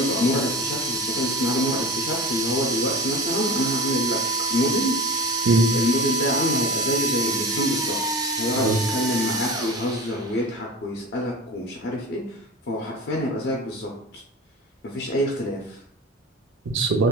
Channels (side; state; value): both; normal; correlation 0.34